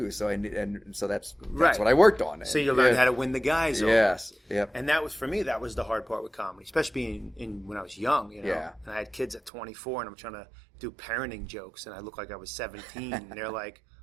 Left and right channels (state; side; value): drops out; left; at 9.5 s